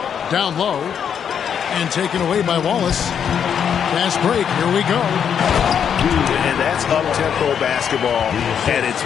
Down low. And taken away by Wallace. Fast break. Here we go. And that's up-tempo basketball at its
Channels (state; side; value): quieter; right; 8.0 dB